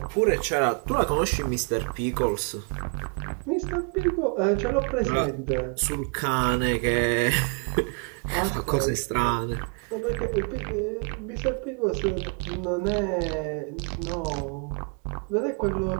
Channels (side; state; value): left; quieter; 38.8 dB